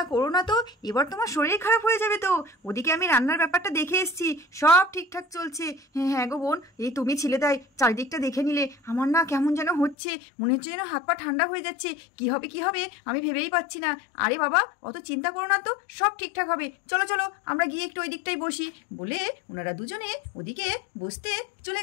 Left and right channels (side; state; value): right; drops out; at 10.0 s